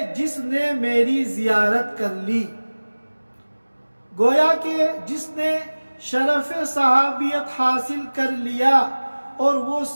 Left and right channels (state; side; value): inverted; both; correlation -1.00